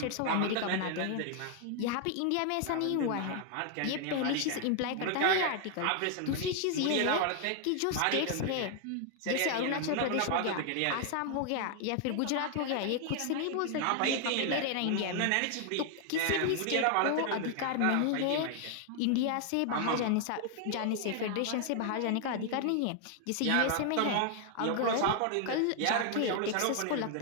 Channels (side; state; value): both; different; correlation 0.00